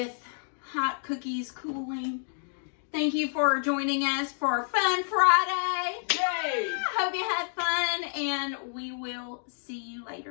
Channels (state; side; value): silent; right; digital silence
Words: hot cookies cooling. Thank you for joining us for Fun Friday. Yay! Hope you had fun, and we will see you